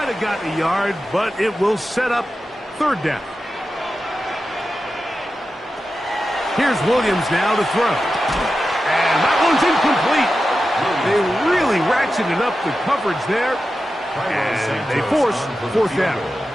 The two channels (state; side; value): normal; both; correlation 0.92